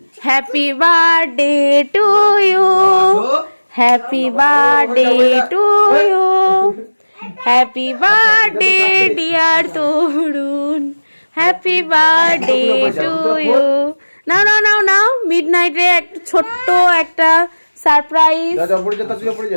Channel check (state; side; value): inverted; both; correlation -1.00